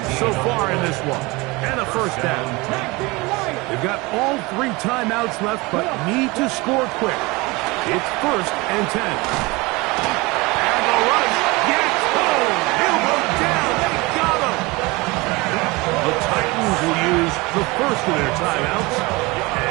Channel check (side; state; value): left; quieter; 24.0 dB